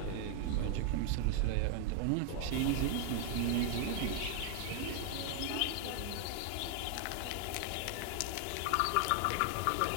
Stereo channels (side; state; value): both; different; correlation 0.00